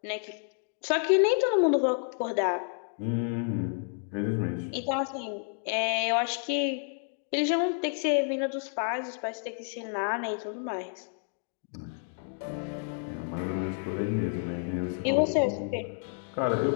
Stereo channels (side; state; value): right; silent; 58 dB below the other